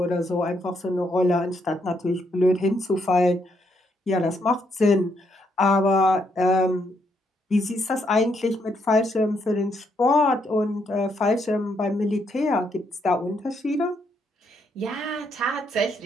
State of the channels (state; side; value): normal; both; correlation 0.75